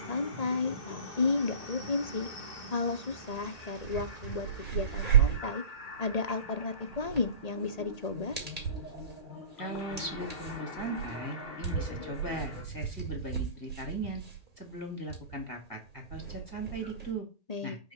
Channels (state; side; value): late; right; 1.8 ms